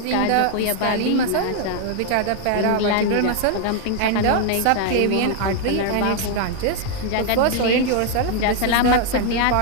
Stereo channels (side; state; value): both; different; correlation 0.00